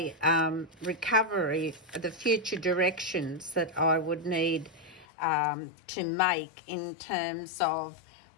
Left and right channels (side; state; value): right; drops out; at 5.1 s